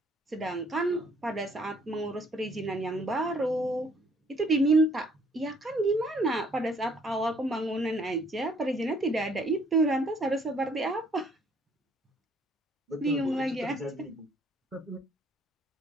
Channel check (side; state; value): both; normal; correlation 0.63